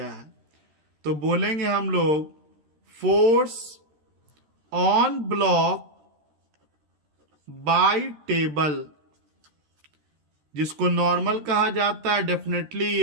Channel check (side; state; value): left; late; 13 ms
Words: है। तो बोलेंगे हम लोग force on block bye table, जिसको नॉर्मल कहा जाता है, डेफिनेटली